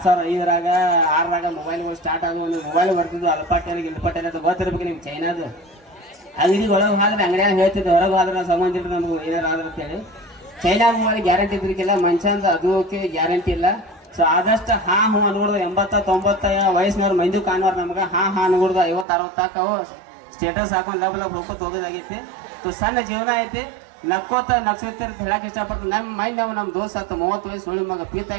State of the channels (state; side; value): drops out; left; at 19.1 s